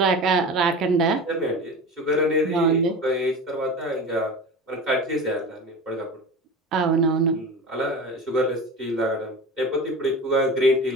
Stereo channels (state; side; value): normal; both; correlation 0.32